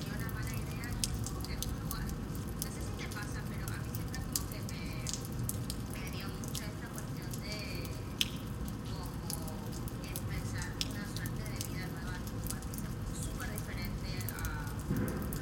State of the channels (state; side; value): identical; both; correlation 1.00